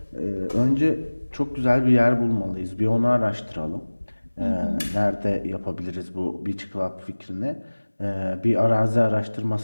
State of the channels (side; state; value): both; inverted; correlation -1.00